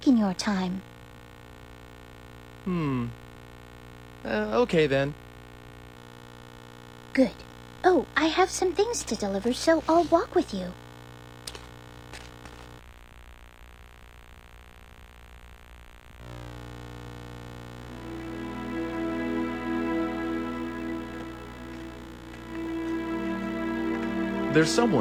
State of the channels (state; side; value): identical; both; correlation 1.00